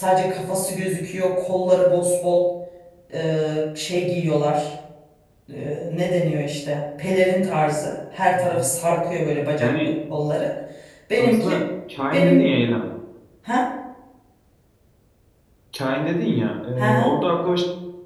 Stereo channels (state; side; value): identical; both; correlation 1.00